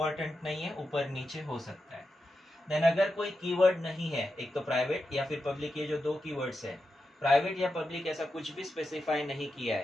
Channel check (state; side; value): normal; both; correlation 0.89